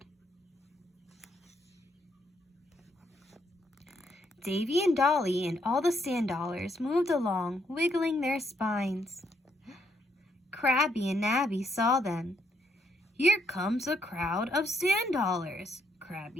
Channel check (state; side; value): normal; both; correlation 0.75